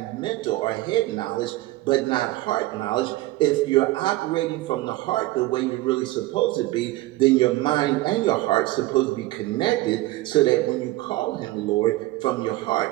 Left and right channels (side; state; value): left; quieter; 18.1 dB